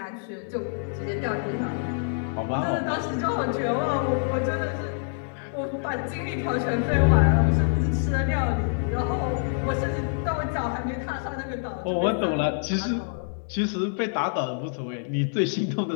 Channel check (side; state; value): right; silent; digital silence